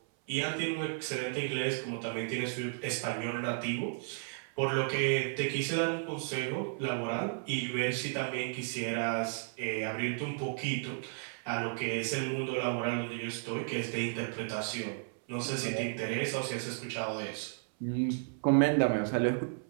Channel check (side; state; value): left; silent; 55 dB below the other